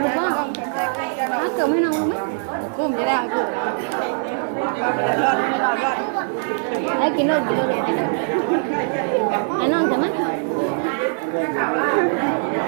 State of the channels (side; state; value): left; silent; 65 dB below the other